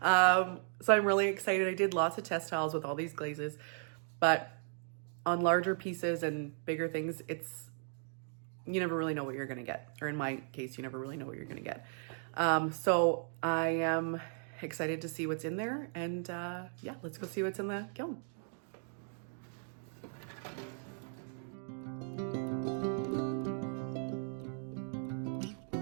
So I'm really excited. I did lots of test tiles with all these glazes, but on larger pieces and bigger things, you never really know what you're gonna get. Or in my case, you never really know what you're gonna get. So I am excited to see what's in there, and yeah, let's go see what's in the kiln.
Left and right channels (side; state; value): left; silent; 54 dB below the other